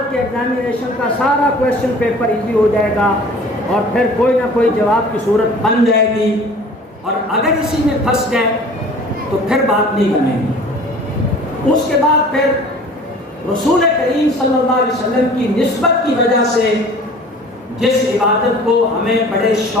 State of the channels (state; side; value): normal; both; correlation 0.46